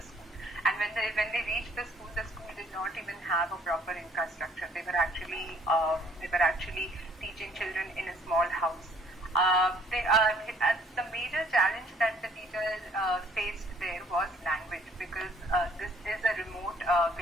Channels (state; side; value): normal; both; correlation 0.60